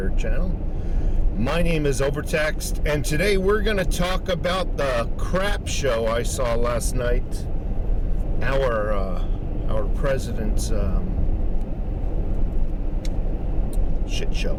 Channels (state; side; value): identical; both; correlation 1.00